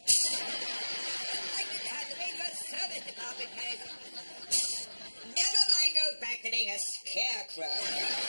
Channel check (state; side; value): inverted; both; correlation -1.00